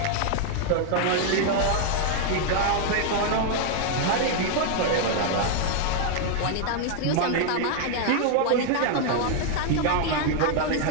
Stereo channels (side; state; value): both; different; correlation 0.00